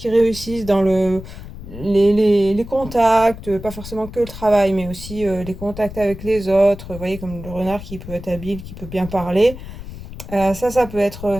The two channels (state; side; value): noise; left; rumble, 12 dB below the sound